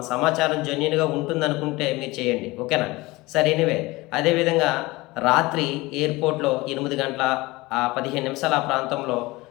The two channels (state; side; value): quieter; right; 21.4 dB